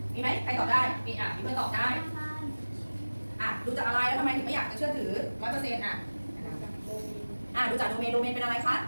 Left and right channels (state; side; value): inverted; both; correlation -1.00